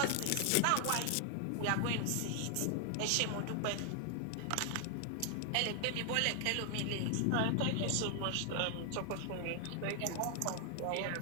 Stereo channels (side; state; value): both; different; correlation 0.00